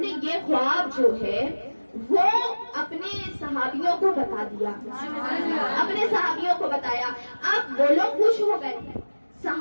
نے یہ خواب جو ہے وہ اپنے صحابیوں کو بتا دیا، اپنے صحابیوں کو بتایا۔ اب وہ لوگ خوش ہو گئے،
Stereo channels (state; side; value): inverted; both; correlation -1.00